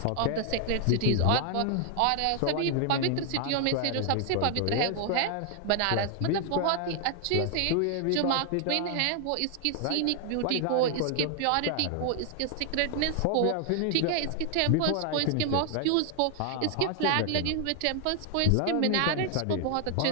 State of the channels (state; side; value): different; both; correlation 0.00